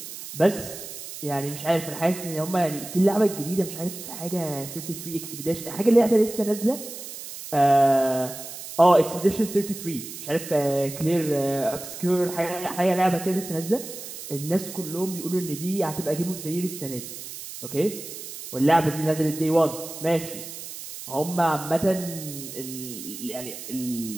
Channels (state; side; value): noise; right; hiss, 11 dB below the sound